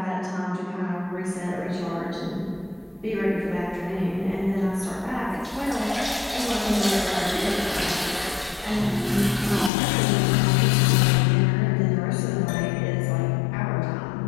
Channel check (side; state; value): right; drops out; at 9.7 s